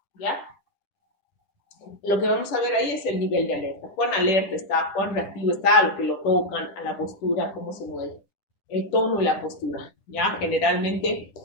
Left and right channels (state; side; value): late; right; 10 ms